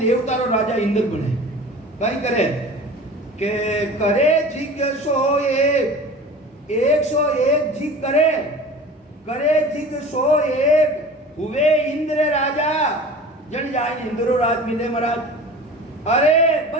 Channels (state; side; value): normal; both; correlation 0.38